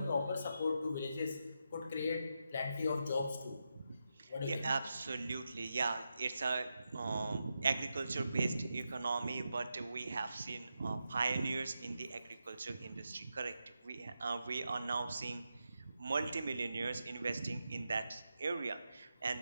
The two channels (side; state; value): both; inverted; correlation -0.87